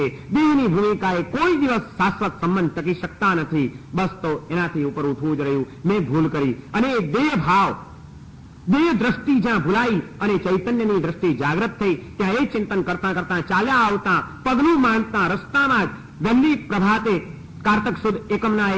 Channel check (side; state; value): both; identical; correlation 1.00